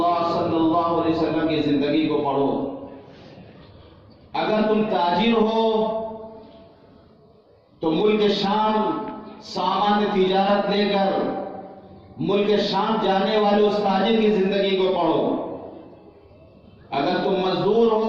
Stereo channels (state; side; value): identical; both; correlation 1.00